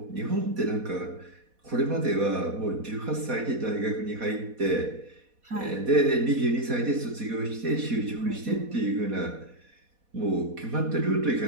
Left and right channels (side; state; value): left; late; 4.1 ms